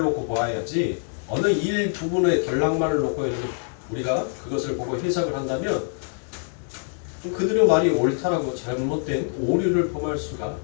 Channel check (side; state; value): right; silent; 62 dB below the other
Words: 놓고 보아야지 어느 일부분의 덜락만을 놓고 이렇게 우리가 그것을 보고 해석을 한다면 그들의 말이 옳다라고 잘못된 오류를 범할 수가